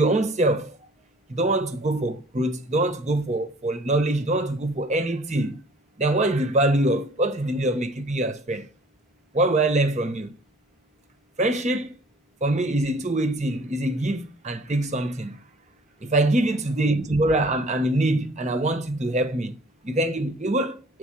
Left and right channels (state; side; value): normal; both; correlation 0.52